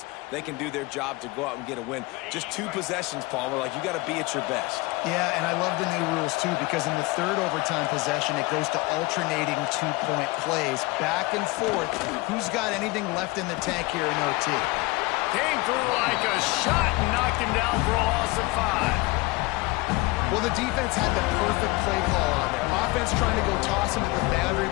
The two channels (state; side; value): quieter; right; 23.0 dB